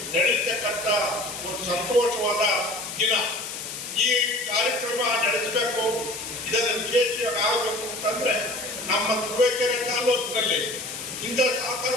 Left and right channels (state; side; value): noise; left; hiss, 8 dB below the sound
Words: ನಡೆಯತಕ್ಕಂಥ ಒಂದು ಸಂತೋಷವಾದ ದಿನ. ಈ ಕಾರ್ಯಕ್ರಮ ನಡೆಸಬೇಕು, ಇದನ್ನು ವಿಶೇಷವಾಗಿ ಆಗಬೇಕು ಅಂತಂದ್ರೆ ನಮ್ಮ ತುರುವೇಕೆರೆ ತಾಲೂಕಿನಲ್ಲಿ ಇಂಥ ಸಹಕಾರ